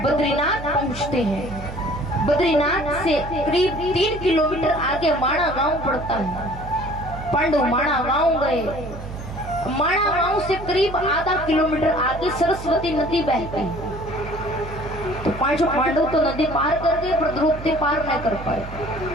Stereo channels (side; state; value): right; noise; hum, 11 dB below the sound